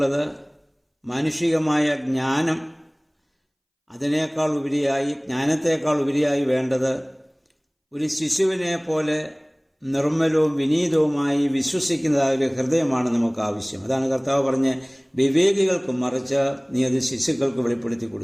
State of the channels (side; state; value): both; identical; correlation 1.00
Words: മാനുഷികമായ ജ്ഞാനം. അതിനേക്കാൾ ഉപരിയായി, ജ്ഞാനത്തേക്കാൾ ഉപരിയായി വേണ്ടത് ഒരു ശിശുവിനെ പോലെ നിർമ്മലവും വിനീതവുമായി വിശ്വസിക്കുന്നതായ ഒരു ഹൃദയമാണ് നമുക്ക് ആവശ്യം. അതാണ് കർത്താവ് പറഞ്ഞ്, വിവേകികൾക്കും മറിച്ച് നീ അത് ശിശുക്കൾക്ക് വെളിപ്പെടുത്തി